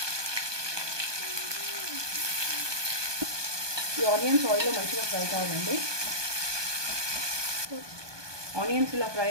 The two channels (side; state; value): left; late; 1.2 ms